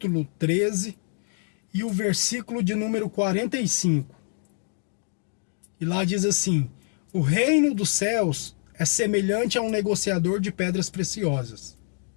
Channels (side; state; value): right; silent; 61 dB below the other